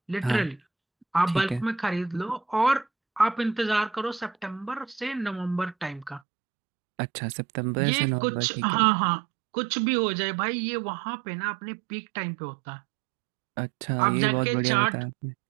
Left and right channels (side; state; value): left; drops out; at 6.2 s